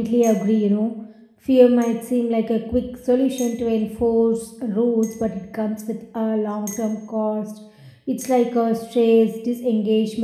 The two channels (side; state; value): both; identical; correlation 1.00